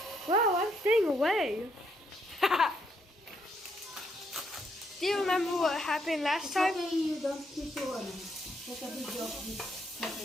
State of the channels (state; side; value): normal; both; correlation 0.75